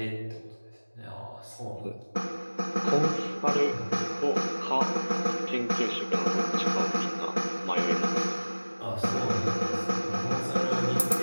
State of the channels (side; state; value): both; inverted; correlation -1.00